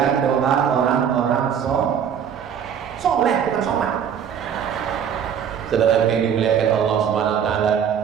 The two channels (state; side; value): quieter; left; 8.2 dB